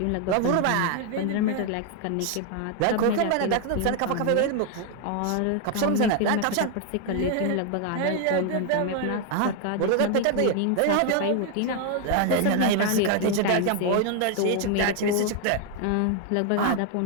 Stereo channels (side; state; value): both; different; correlation 0.00